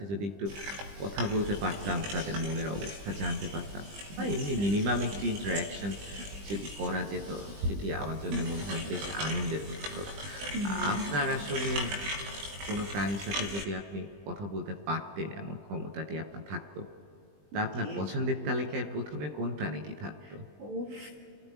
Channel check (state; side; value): late; left; 20 ms